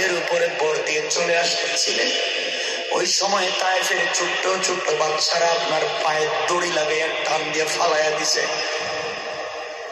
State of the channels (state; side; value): identical; both; correlation 1.00